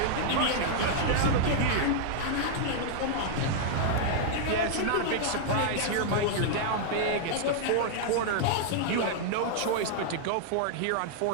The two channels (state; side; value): different; both; correlation -0.01